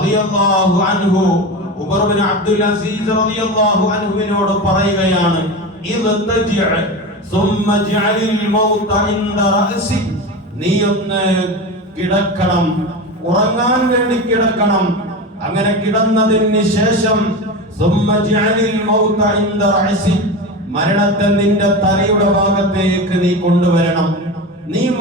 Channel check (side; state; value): both; normal; correlation 0.25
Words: അൻഹു ഉമർ ബിൻ അബ്ദുൽ അസീസ് റളിയല്ലാഹു അൻഹുവിനോട് പറയുകയാണ്, നീ ഒന്ന് കിടക്കണം, ഉറങ്ങാൻ വേണ്ടി കിടക്കണം. അങ്ങനെ കിടന്നതിന് ശേഷം മരണത്തെ നിന്റെ തലയുടെ ഭാഗത്തേക്ക് നീ കൊണ്ടുവരണം. നീ